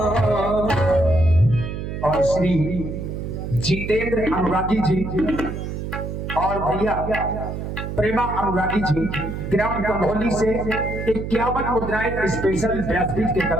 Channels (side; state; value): right; noise; hum, 6 dB below the sound